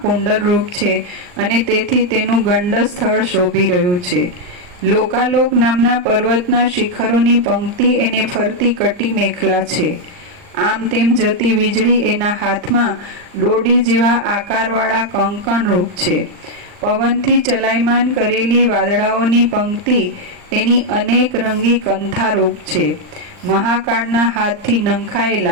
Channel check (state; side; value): late; left; 39 ms